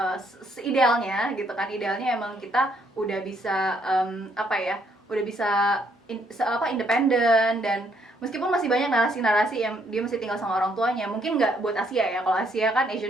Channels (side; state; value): both; normal; correlation 0.70